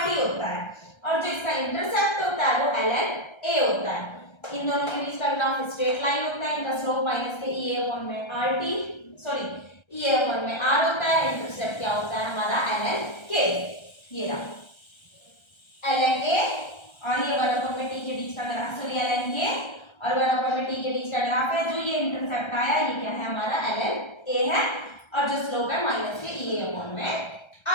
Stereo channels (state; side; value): late; right; 1.3 ms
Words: होता है। और जो इसका इंटरसेप्ट होता है वो ln A होता है। इन दोनों के बीच का ग्राफ स्ट्रेट लाइन होता है, इनका स्लोप माइनस के EA अपॉन में EA अपॉन में R होता है। इंटरसेप्ट क्या होता है हमारा ln K, ये रहा ln A और ये 1 अपॉन में T के बीच का ग्राफ, ln K और 1 अपॉन में T के बीच का ग्राफ है। जो ये इंटरसेप्ट आया ये क्या है हमारा ln A है और जो स्लोप है माइनस के EA अपॉन में